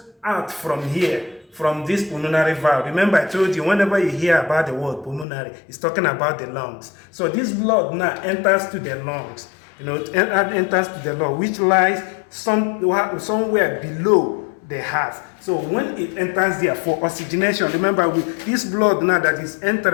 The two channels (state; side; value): drops out; right; at 5.2 s